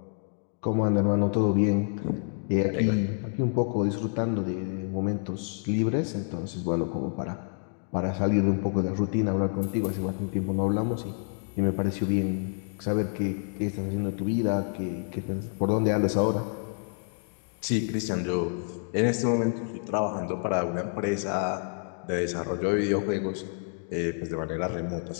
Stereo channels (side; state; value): right; silent; 55 dB below the other